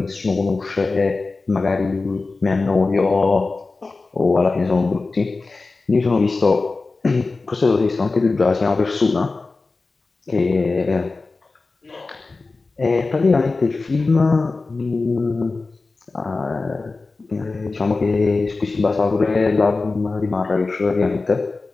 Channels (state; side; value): quieter; right; 3.7 dB